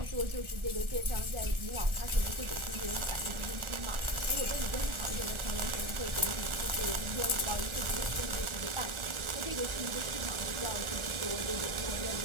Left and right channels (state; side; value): late; left; 1.4 ms